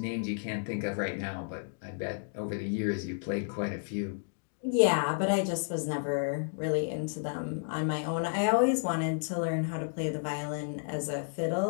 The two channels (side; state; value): right; silent; digital silence